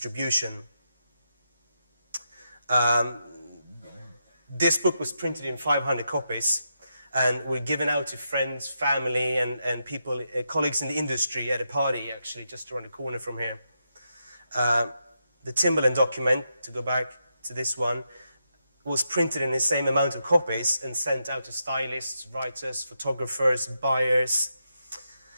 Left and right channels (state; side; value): inverted; both; correlation -0.84